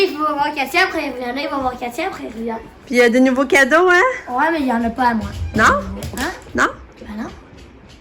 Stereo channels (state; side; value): identical; both; correlation 1.00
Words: faut voir Katia, après il revient. Il va voir Katia, après il revient. Puis il y a des nouveaux cadeaux, hein? Ouais, mais il n'y en a pas à moi. Non? Hein? Non? Ben non.